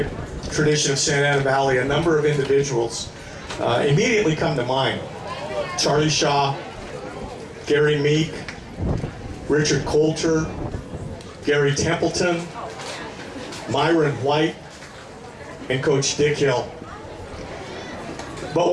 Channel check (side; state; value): both; identical; correlation 1.00